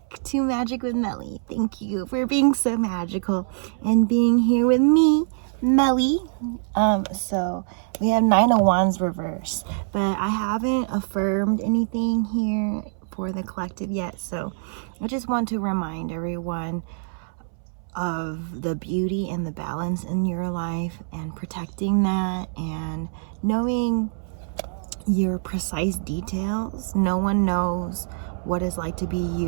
to Magic with Melly. Thank you for being so magical and being here with me, Melly. So we have Nine of Wands reverse, but I haven't affirmed anything here for the collective yet. So I just want to remind everyone of the beauty and the balance in your life and protecting that and knowing your precise details. No one knows what it's like to be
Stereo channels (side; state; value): left; silent; 62 dB below the other